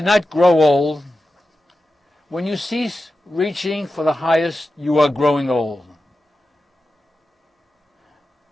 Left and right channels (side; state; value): both; normal; correlation 0.92